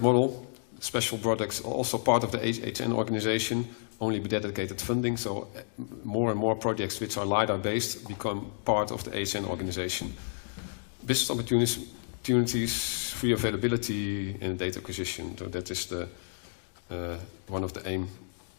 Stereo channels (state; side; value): silent; right; digital silence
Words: model. Special products are also part of the HN organization, only with dedicated funding. So more and more projects which are LiDAR based become part of the HN organization. Business opportunities free availability in data acquisition. So that is the one of the aim.